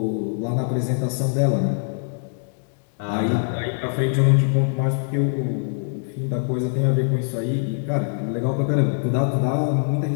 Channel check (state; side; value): silent; right; digital silence